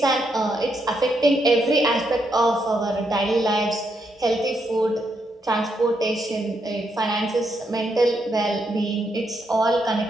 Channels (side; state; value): both; normal; correlation 0.79